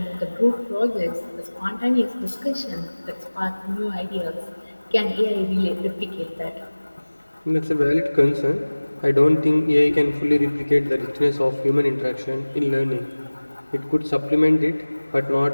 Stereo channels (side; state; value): both; inverted; correlation -1.00